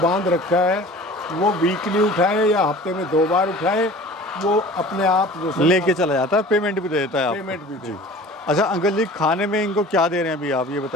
रखा है, वो वीकली उठाए या हफ्ते में 2 बार उठाए, वो अपने आप जो लेके चला जाता है, पेमेंट भी दे देता है आपको। पेमेंट भी दे। अच्छा अंकल जी, खाने में इनको क्या दे रहे हैं अभी आप ये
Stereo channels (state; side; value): normal; both; correlation 0.43